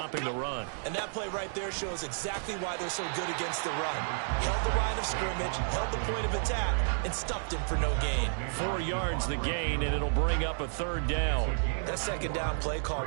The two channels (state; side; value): silent; left; digital silence